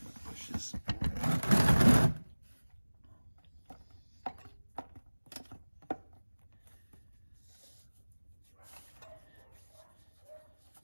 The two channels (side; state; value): both; inverted; correlation -1.00